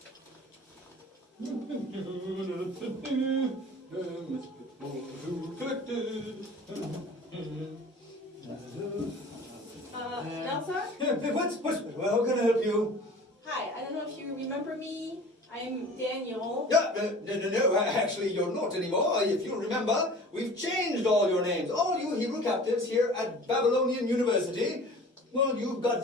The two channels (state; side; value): normal; both; correlation 0.43